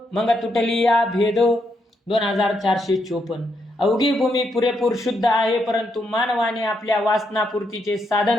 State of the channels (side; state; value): both; normal; correlation 0.79